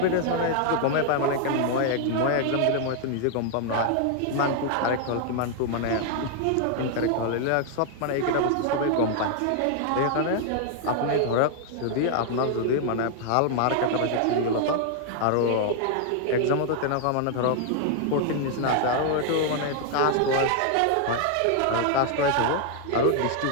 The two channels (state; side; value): different; both; correlation 0.00